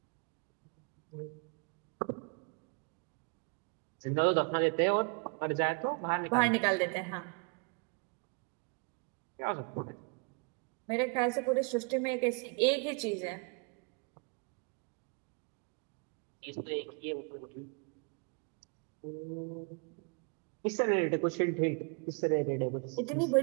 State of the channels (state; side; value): quieter; left; 34.5 dB